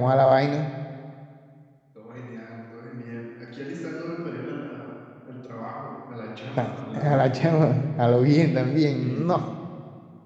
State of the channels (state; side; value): identical; both; correlation 1.00